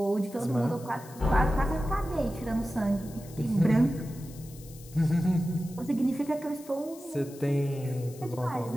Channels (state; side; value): noise; left; hiss, 20 dB below the sound